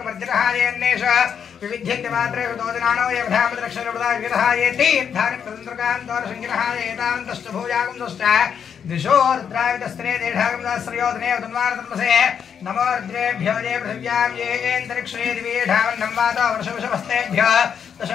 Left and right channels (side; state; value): right; quieter; 7.6 dB